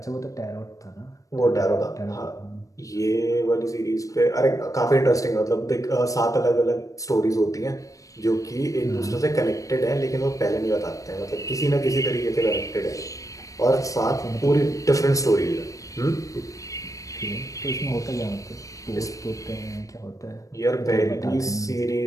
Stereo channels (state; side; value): late; right; 0.16 ms